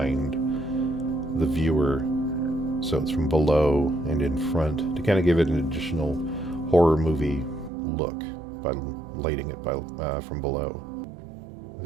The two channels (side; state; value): left; drops out; at 7.7 s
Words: the viewer, so it's from below and in front, to kind of give it an additional horror movie look by lighting it from below.